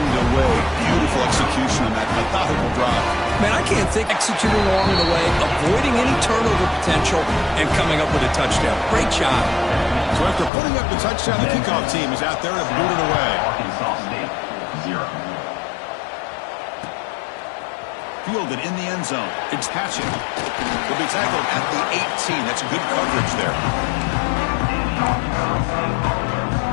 away. Beautiful execution on that methodical drive. Man, I can't think executing along the way, avoiding any turnover potential, and coming up with a touchdown. Great job. So after putting up the touchdown, the kickoff team is out there to boot it away. Arkansas State, 0. Fielded in the end zone. It's Hatchet. Will be tackled at the 18. That's good coverage there.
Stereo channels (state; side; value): drops out; right; at 10.5 s